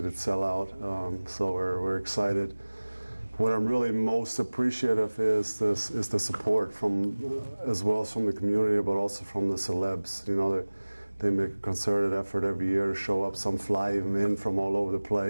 sellout, so we're excited. What I'm really most appreciative is the support from, as well as from the community, but also from the celebs. You know, they make a concerted effort every year to show up. Some fly even in from all over the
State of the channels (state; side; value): inverted; both; correlation -1.00